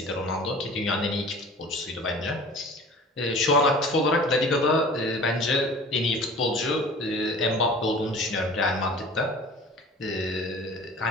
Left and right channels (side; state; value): both; normal; correlation 0.43